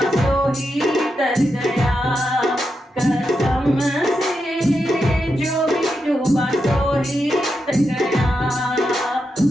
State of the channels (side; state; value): both; normal; correlation 0.85